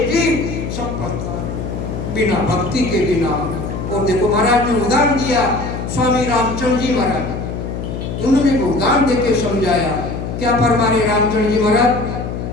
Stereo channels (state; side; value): noise; left; hum, 5 dB below the sound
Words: जीव सब पछता है बिना भक्ति के बिना। और देखो महाराज ने उदाहरण दिया, स्वामी रामचंद्र जी महाराज, उन्होंने उदाहरण देके समझाया। क्या फरमा रहे रामचंद्र जी महाराज,